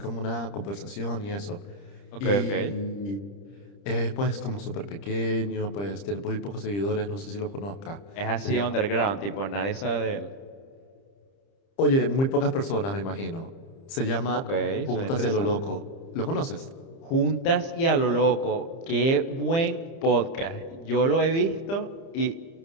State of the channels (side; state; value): right; late; 30 ms